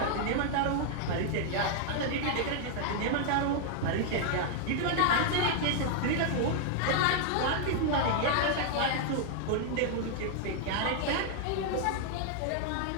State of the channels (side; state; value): both; different; correlation 0.00